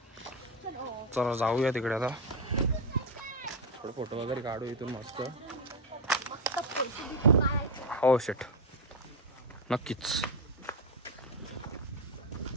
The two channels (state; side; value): normal; both; correlation 0.10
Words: चला जाऊया तिकडे आता. थोडं फोटो वगैरे काढू इथून मस्त. हो शेट नक्कीच.